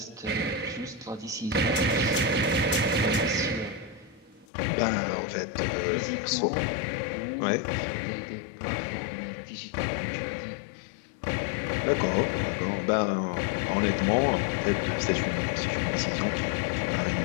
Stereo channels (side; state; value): right; drops out; at 4.5 s